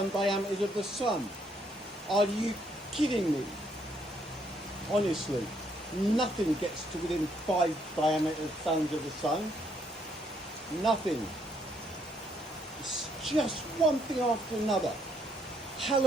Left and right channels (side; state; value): both; normal; correlation 0.71